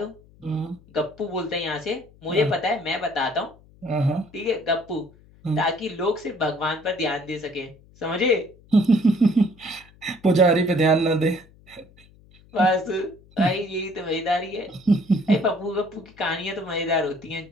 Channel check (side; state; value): left; noise; hum, 26 dB below the sound